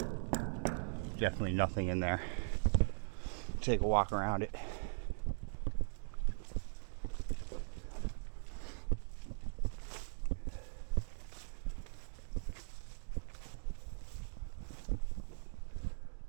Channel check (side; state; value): left; silent; digital silence